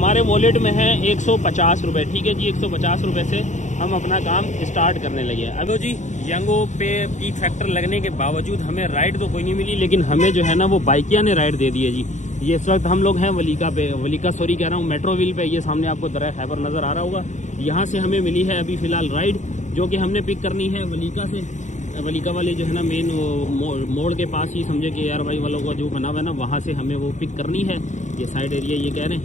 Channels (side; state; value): right; late; 0.35 ms